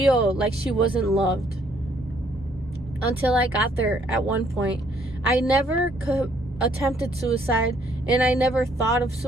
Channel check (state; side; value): normal; both; correlation 0.66